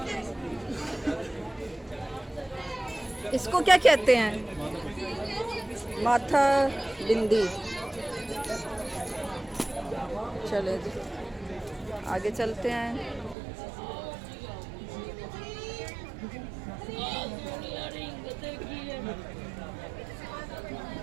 इसको क्या कहते हैं? माथा बिंदी। चले जी आगे चलते हैं।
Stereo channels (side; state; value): left; drops out; at 13.4 s